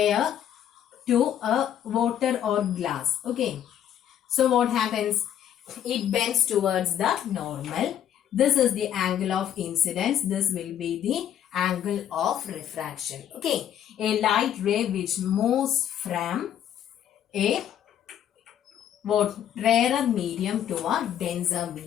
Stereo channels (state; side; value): quieter; right; 10.2 dB